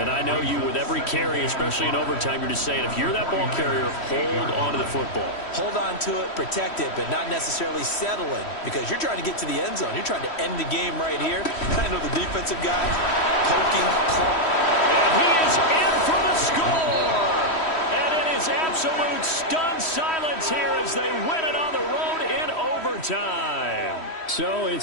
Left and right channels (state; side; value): late; right; 3.1 ms